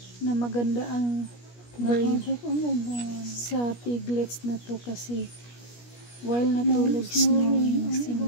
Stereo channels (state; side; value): late; right; 17 ms